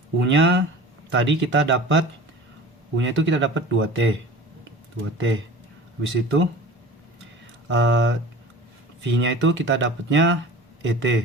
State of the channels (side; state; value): both; normal; correlation 0.39